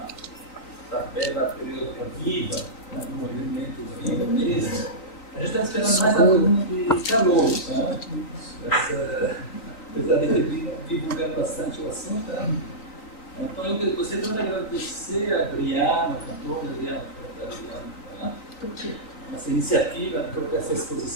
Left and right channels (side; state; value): right; late; 3.9 ms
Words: tabela periódica viva, né, no movimento vivo mesmo. A gente está esperando mais alunos de calor, né? Apesar de ter divulgado bastante o assunto, né? Então eu gostaria de agradecer a Adriana, a cantora Adriana, essa iniciativa de colocar essa